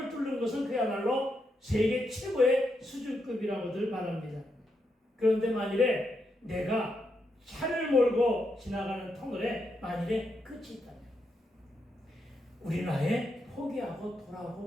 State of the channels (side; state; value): both; normal; correlation 0.82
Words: 뚫는 것은 그야말로 세계 최고의 수준급이라고들 말합니다. 그런데 만일에 내가 차를 몰고 지나가는 터널에 만일에 끝이 있다면 우리는 아예 포기하고